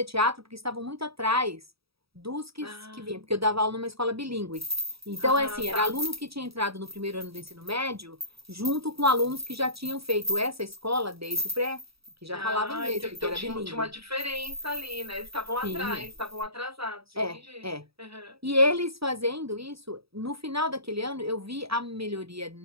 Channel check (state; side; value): late; left; 0.77 ms